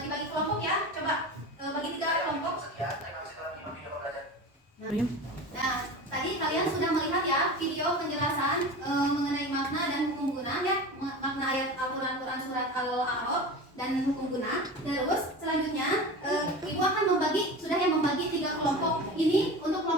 dibagi kelompok ya. Coba bagi 3 kelompok. Sekian, terima kasih telah menyimak video pembelajaran. Nah, tadi kalian sudah melihat ya video penjelasan mengenai makna dan hukum guna ya, makna ayat Al-Quran surat Al-A'raf dan hukum guna. Terus selanjutnya Ibu akan membagi 3 kelompok. Ini untuk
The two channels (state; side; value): normal; both; correlation 0.31